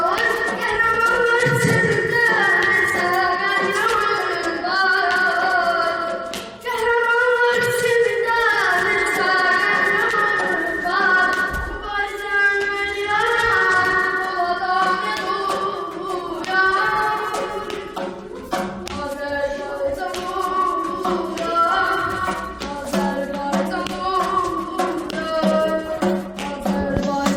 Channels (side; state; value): both; identical; correlation 1.00